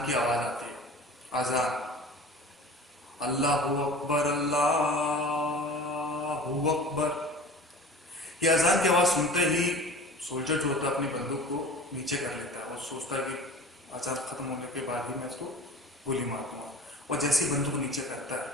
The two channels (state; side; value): normal; both; correlation 0.39